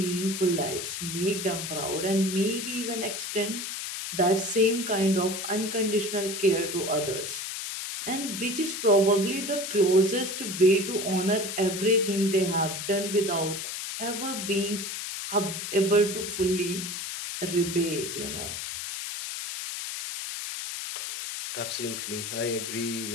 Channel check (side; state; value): left; noise; hiss, 5 dB below the sound